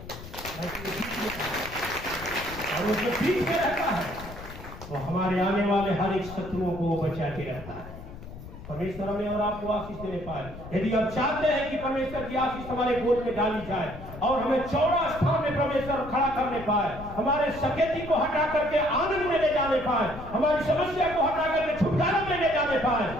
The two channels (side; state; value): left; noise; rumble, 13 dB below the sound